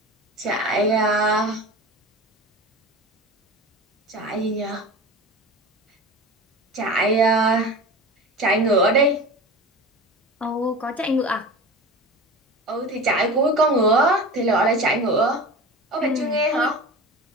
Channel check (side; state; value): both; normal; correlation 0.33